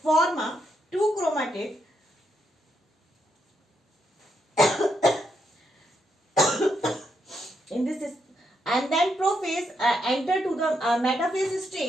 form a two chromatid in this, and then prophase enter to the metaphase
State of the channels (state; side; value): normal; both; correlation 0.80